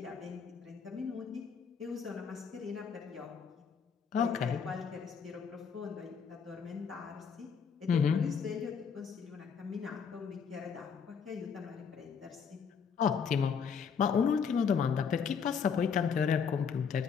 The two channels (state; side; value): quieter; right; 6.5 dB